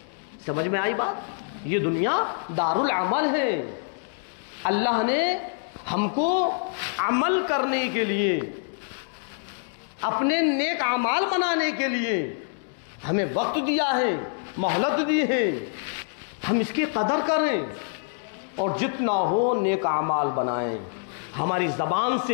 سمجھ میں آئی بات؟ یہ دنیا دار العمل ہے۔ اللہ نے ہم کو عمل کرنے کے لیے، اپنے نیک اعمال بنانے کے لیے ہمیں وقت دیا ہے، مہلت دی ہے، ہم اس کی قدر کریں اور جتنا ہو نیک اعمال بنائیں۔ ہماری زبان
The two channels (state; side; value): silent; right; digital silence